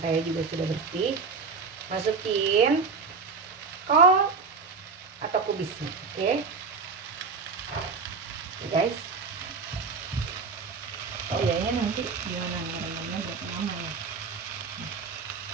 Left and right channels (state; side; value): quieter; left; 4.8 dB